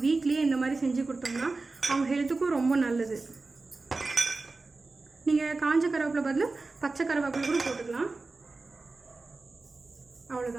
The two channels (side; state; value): left; quieter; 3.6 dB